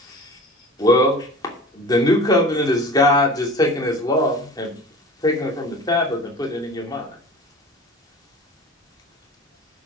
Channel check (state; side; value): normal; both; correlation 0.39